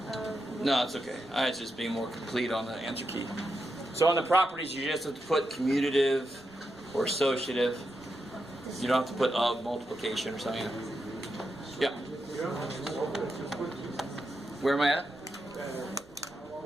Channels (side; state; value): right; noise; rumble, 27 dB below the sound